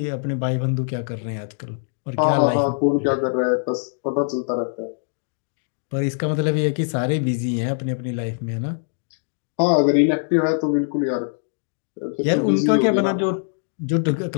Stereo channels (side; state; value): right; silent; digital silence